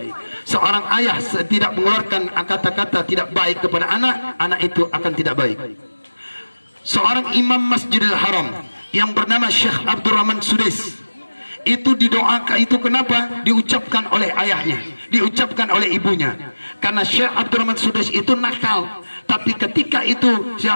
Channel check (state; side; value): inverted; both; correlation -1.00